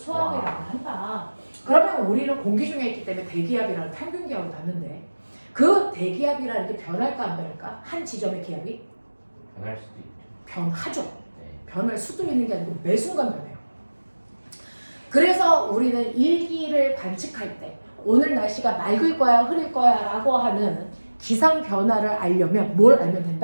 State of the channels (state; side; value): inverted; both; correlation -1.00